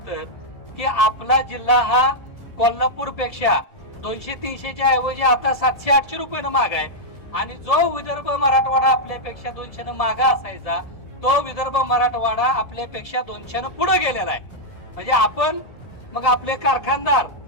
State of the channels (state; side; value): late; right; 1.7 ms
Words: की आपला जिल्हा हा कोल्हापूर पेक्षा 200-300च्या ऐवजी आता 700-800 रुपयानं महाग आहे. आणि जो विदर्भ मराठवाडा आपल्यापेक्षा 200 मागा असायचा तो विदर्भ मराठवाडा आपल्यापेक्षा 200 पुढे गेलेला आहे. म्हणजे आपण मग आपले कारखानदार